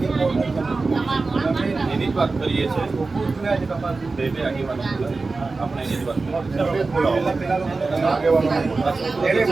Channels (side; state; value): left; quieter; 3.8 dB